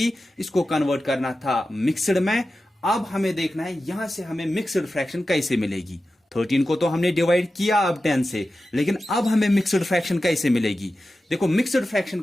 इसको कन्वर्ट करना था मिक्सड में। अब हमें देखना है यहां से हमें मिक्सड फ्रैक्शन कैसे मिलेगी। 13 को तो हमने डिवाइड किया अब 10 से, लेकिन अब हमें मिक्सड फ्रैक्शन कैसे मिलेगी। देखो मिक्सड फ्रैक्शन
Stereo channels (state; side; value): normal; both; correlation 0.93